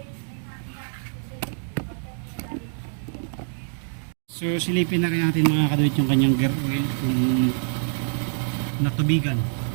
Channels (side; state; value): left; silent; 62 dB below the other